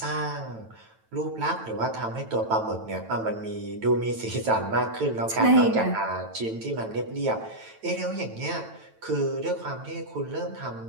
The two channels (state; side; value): late; left; 9.0 ms